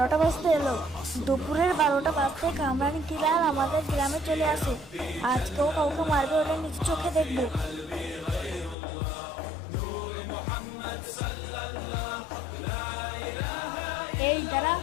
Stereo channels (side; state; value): right; drops out; at 8.8 s